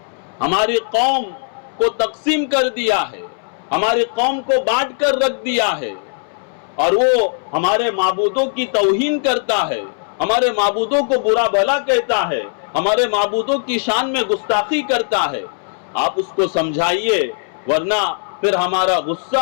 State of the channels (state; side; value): silent; right; 65 dB below the other